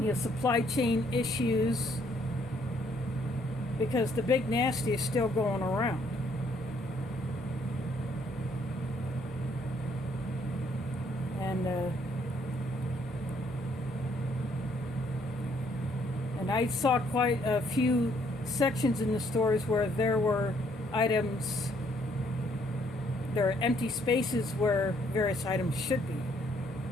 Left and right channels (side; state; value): both; normal; correlation 0.68